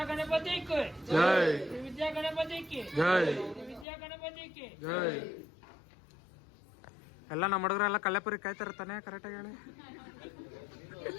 गणपति की जय, विद्या गणपति की जय, विद्या गणपति की जय. ಎಲ್ಲ ನಮ್ಮ ಹುಡುಗರೆಲ್ಲ ಕಲ್ಲೆಪುರಿ ಕಾಯ್ತಾರ ತಾನೆ, ಕರೆಕ್ಟಾಗಿ ಹೇಳಿ.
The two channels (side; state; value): right; drops out; at 3.9 s